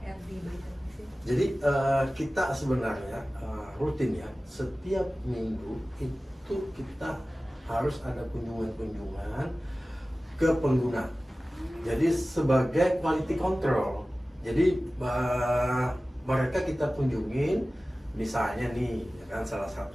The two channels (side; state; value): both; normal; correlation 0.97